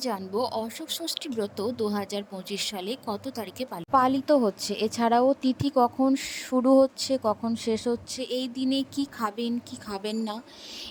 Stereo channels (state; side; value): identical; both; correlation 1.00